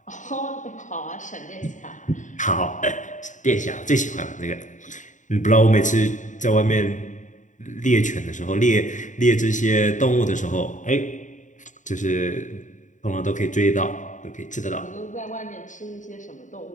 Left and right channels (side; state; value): right; late; 0.36 ms